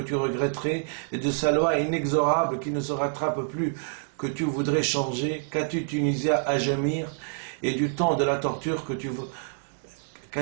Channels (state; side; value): silent; left; digital silence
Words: tu regretterais et de sa loi inexorable qui ne se rattrape plus que tu voudrais changer? Qu'as-tu, Tunisia, à gémir et du temps de la torture que tu